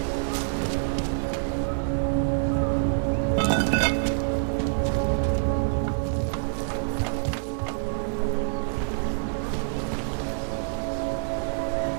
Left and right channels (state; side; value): silent; left; digital silence